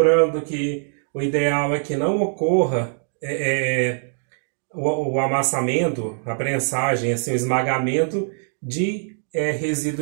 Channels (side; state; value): left; silent; 55 dB below the other